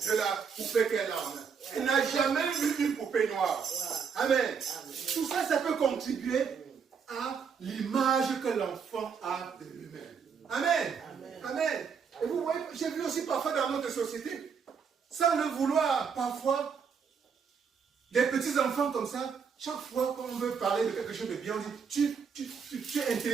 de la poupée qu'elle a en main. Elle n'a jamais vu une poupée noire. Amen. Tout ça, ça peut contribuer à l'image que l'enfant a de lui-même. Amen. Et vous voyez, j'ai vu aussi parfois dans notre société, sans le vouloir, parfois, des petits enfants comme ça, chaque fois qu'on veut parler de quelque chose de bien, on dit, tu es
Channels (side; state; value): left; quieter; 6.3 dB